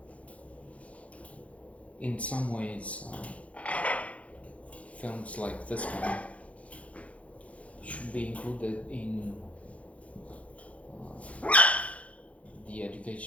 In some ways, films like this one should be included in the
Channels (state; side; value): late; right; 0.065 ms